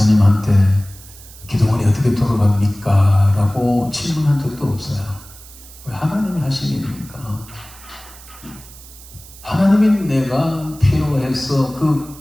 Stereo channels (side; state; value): right; noise; hiss, 20 dB below the sound